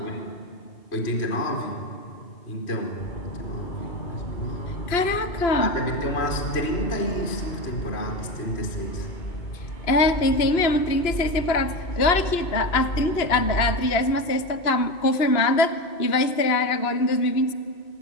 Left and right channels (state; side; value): late; right; 2.9 ms